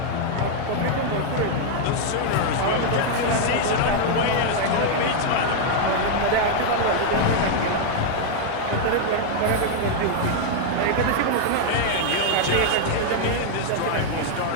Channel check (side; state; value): both; different; correlation 0.00